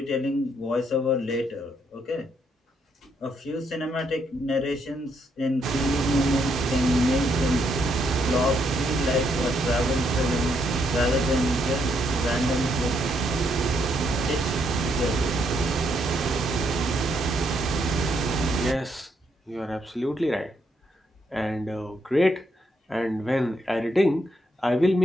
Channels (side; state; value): both; normal; correlation 0.75